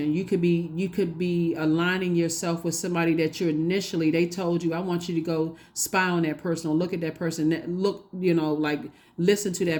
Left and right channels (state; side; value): identical; both; correlation 1.00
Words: You could be aligning yourself with somebody that they told you, I want you to go spy on that person or look at that person, listen to